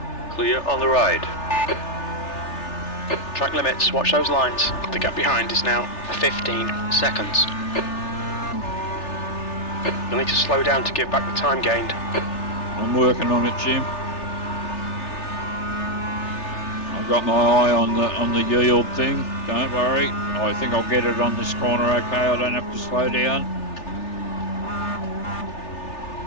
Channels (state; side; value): late; right; 3.4 ms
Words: Clear on the right. Track limits, watch those lines. The gap behind is now 15 seconds. You'll need to slow down to give back the time gained. I'm working on it, Jim. I've got my eye on the yield thing. Don't worry. I think I'll get it on this corner okay. I don't have to slow down.